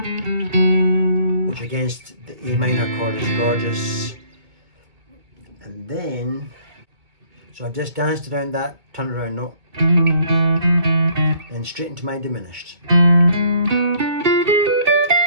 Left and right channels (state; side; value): late; left; 2.2 ms